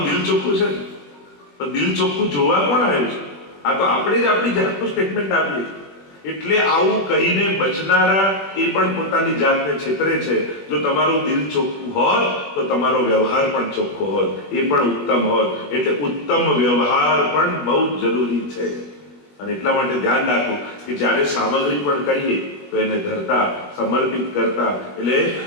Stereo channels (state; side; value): late; right; 20 ms